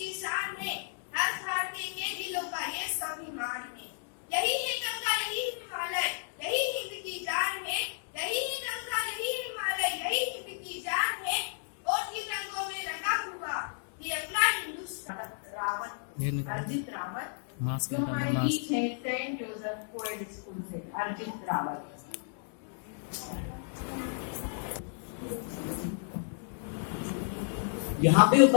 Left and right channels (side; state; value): right; silent; digital silence